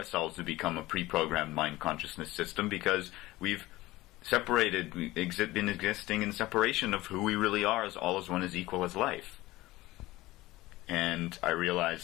to become a pre-programmed mind consciousness system because we've separated, been existing in separation of who we really are as all as one is equal as life. And I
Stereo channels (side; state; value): right; quieter; 18.5 dB